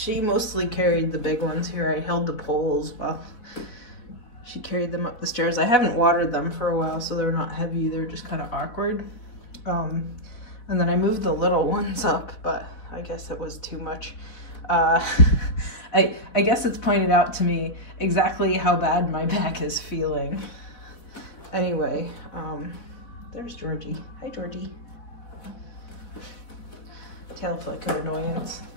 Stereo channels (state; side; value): late; right; 4.1 ms